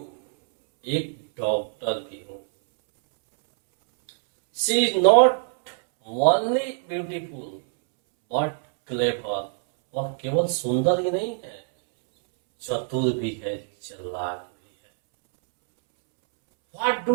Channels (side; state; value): left; silent; 63 dB below the other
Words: एक डॉक्टर भी हूं। She is not only beautiful but clever. वह केवल सुंदर ही नहीं है, चतुर भी है, चालाक भी है। What